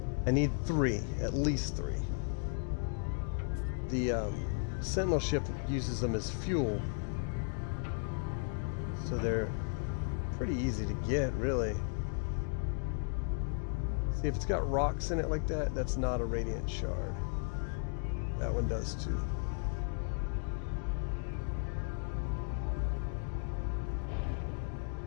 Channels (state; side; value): silent; right; 54 dB below the other